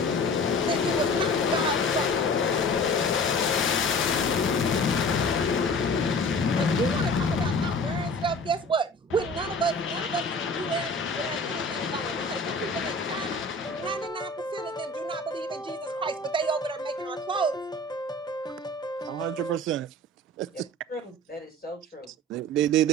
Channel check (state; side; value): normal; both; correlation 0.42